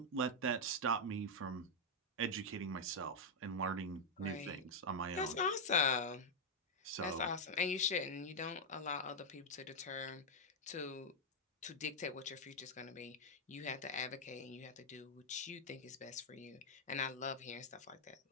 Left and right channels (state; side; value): normal; both; correlation -0.02